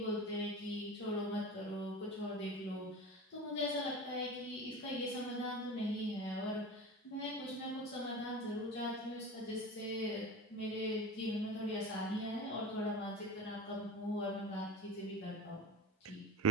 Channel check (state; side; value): normal; both; correlation 0.31